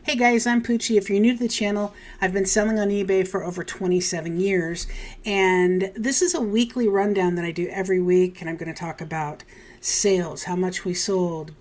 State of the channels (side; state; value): both; identical; correlation 1.00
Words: Hey guys, I'm Poochie. If you're new to the channel, I've been selling on eBay for over 27 years, and this is a weekly rundown that I do every week, and I'm going to talk about sales, how much we sold,